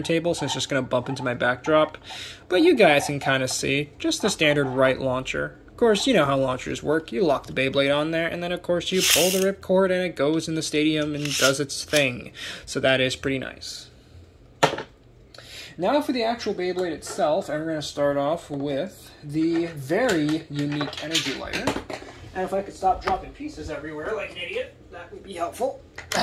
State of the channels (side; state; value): both; identical; correlation 1.00